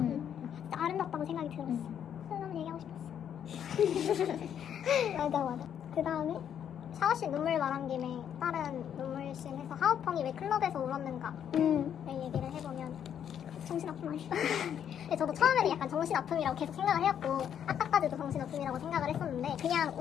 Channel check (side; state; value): right; quieter; 9.1 dB